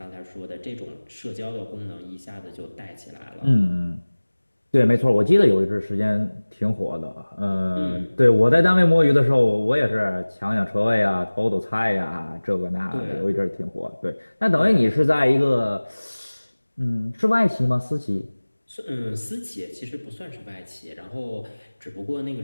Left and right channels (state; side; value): inverted; both; correlation -1.00